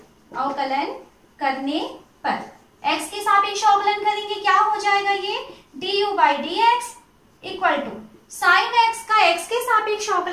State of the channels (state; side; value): identical; both; correlation 1.00